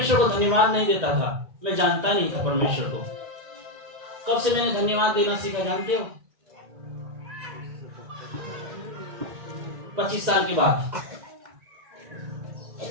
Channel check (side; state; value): left; late; 1.9 ms